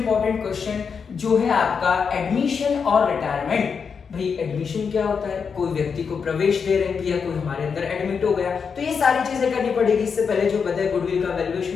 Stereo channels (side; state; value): right; quieter; 6.0 dB